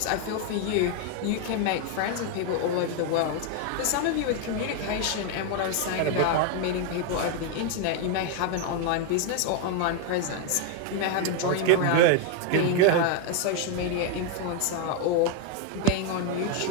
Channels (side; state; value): both; different; correlation 0.01